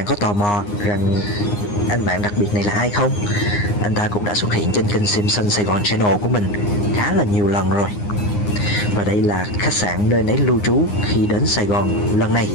có tò mò rằng anh bạn đặc biệt này là ai không? Anh ta cũng đã xuất hiện trên kênh Simpson Sài Gòn Channel của mình khá là nhiều lần rồi. Và đây là khách sạn nơi nấy lưu trú khi đến Sài Gòn lần này.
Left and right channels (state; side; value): late; right; 9.7 ms